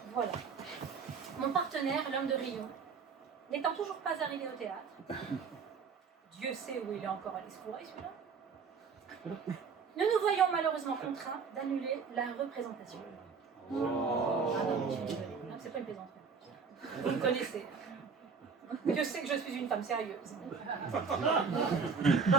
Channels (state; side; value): quieter; left; 5.6 dB